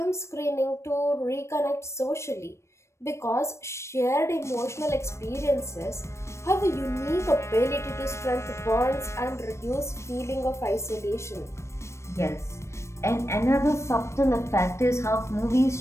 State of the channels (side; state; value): right; late; 0.13 ms